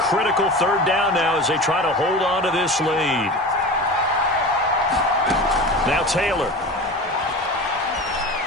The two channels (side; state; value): both; normal; correlation 0.32